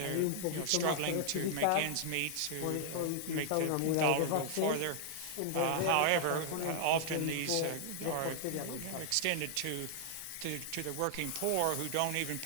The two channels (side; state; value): both; different; correlation 0.00